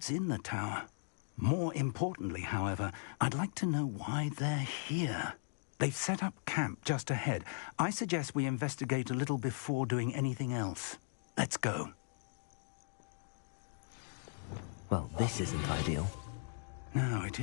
in the tower. More importantly, however, I'd like to know why they're here. They've set up camp just ahead. I suggest we investigate a little before doing anything else. Let's go. Well, this isn't ideal. No, it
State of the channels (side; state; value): right; silent; digital silence